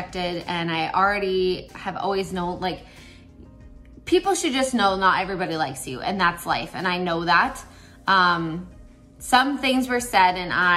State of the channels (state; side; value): identical; both; correlation 1.00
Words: and I already have always known, like, people should just know not everybody likes you, and that's life, and I know that. Some things were said and